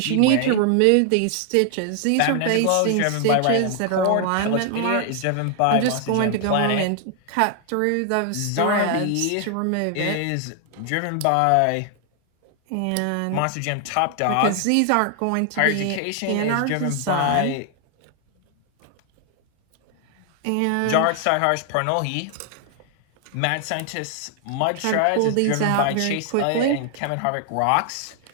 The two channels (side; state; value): both; different; correlation 0.00